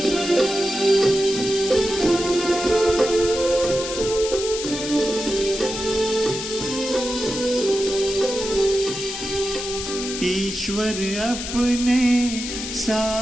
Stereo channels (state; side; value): noise; left; hiss, 7 dB below the sound